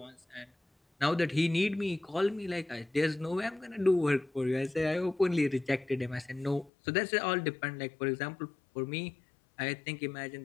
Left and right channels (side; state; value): right; drops out; at 6.7 s